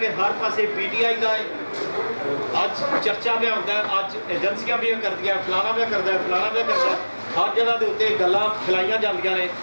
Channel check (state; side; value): inverted; both; correlation -1.00